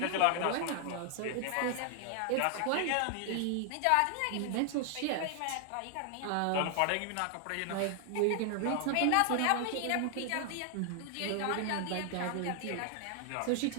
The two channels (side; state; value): both; different; correlation 0.00